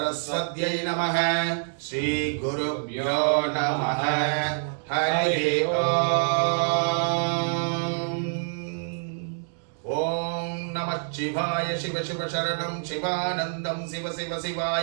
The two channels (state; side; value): silent; left; digital silence